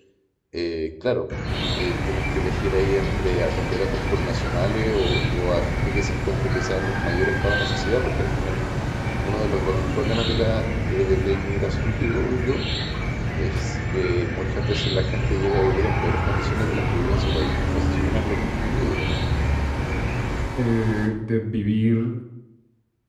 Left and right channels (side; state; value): both; identical; correlation 1.00